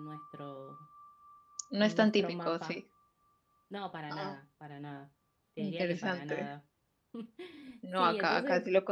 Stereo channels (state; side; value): identical; both; correlation 1.00